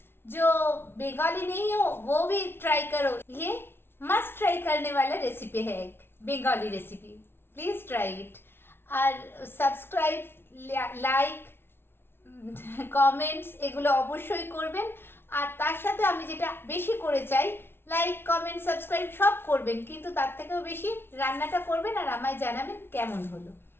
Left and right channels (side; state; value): right; late; 0.11 ms